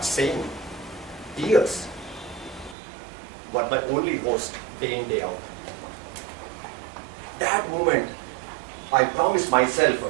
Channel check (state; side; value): drops out; left; at 2.8 s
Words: saying tears were my only host day in, day out. That moment, I promised myself